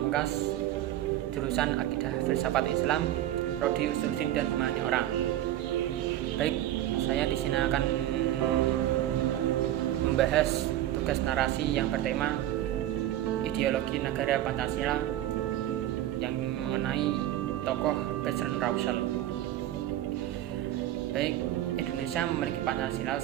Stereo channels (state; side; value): quieter; left; 13.2 dB